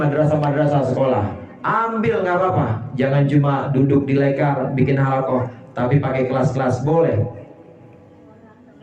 sekolah, ambil, nggak apa-apa. Jangan cuma duduk di lekar bikin halaqah, tapi pakai kelas-kelas, boleh.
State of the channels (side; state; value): both; identical; correlation 1.00